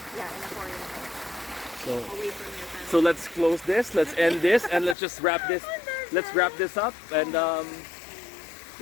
in a foreign country, so away from your family. so let's close this. Let's end this, and let's just wrap this. Let's wrap this up. And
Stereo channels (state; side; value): drops out; right; at 5.0 s